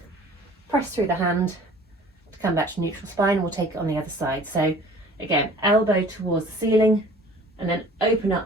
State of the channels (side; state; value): both; normal; correlation 0.48